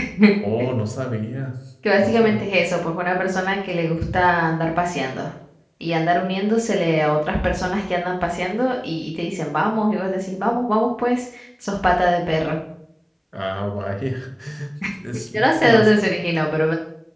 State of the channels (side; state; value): both; identical; correlation 1.00